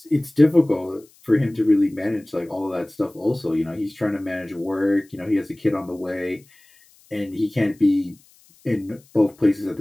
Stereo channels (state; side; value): noise; left; hiss, 30 dB below the sound